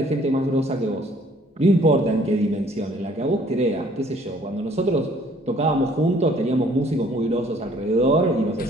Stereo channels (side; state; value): both; normal; correlation 0.59